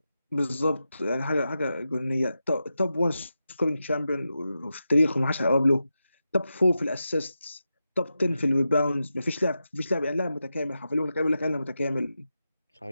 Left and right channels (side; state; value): both; inverted; correlation -0.90